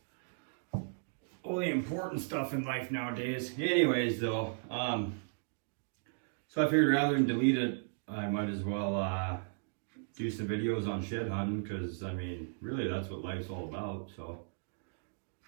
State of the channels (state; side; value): silent; left; digital silence